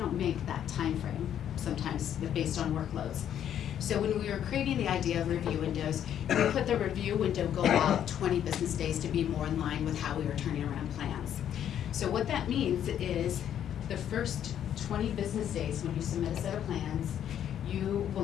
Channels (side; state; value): right; quieter; 10.0 dB